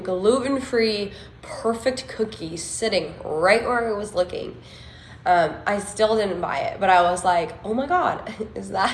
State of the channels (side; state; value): both; identical; correlation 1.00